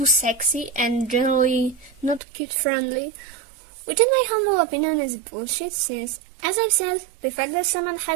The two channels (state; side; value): drops out; left; at 2.2 s